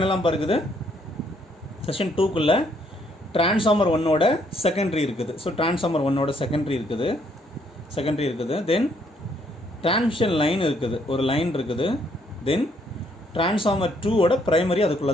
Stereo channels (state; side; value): normal; both; correlation 0.69